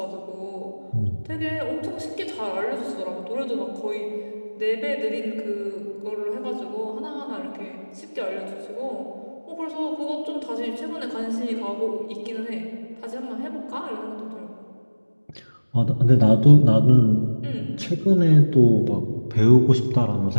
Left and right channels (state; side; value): inverted; both; correlation -1.00